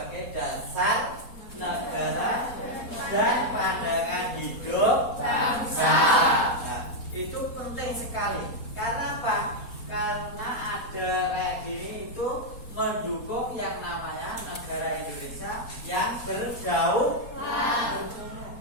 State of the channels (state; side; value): late; right; 4.2 ms